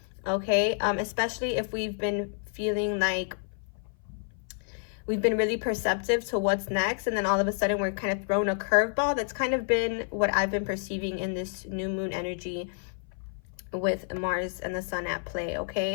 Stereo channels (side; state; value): right; silent; 55 dB below the other